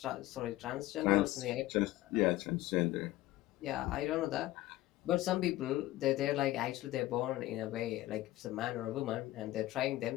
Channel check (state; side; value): quieter; right; 16.4 dB